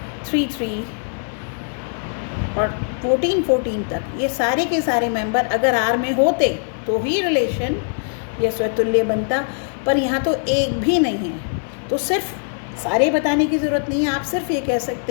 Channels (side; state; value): right; silent; digital silence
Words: 3 3 और 14 14 तक, ये सारे के सारे मेंबर अगर R में होते तो ही रिलेशन ये स्वतुल्य बनता। पर यहाँ तो एक भी नहीं है, तो सिर्फ सारे बताने की ज़रूरत नहीं है। आप सिर्फ ये कह